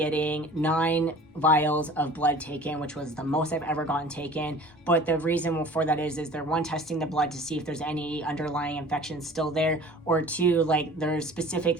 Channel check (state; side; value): normal; both; correlation 0.44